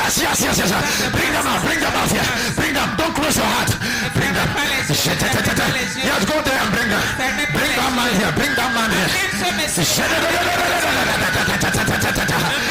Bring them out here. Bring them. Don't close your heart. Bring them. Yes, go there and bring them. Bring that man here. Bring that man here.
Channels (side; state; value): both; identical; correlation 1.00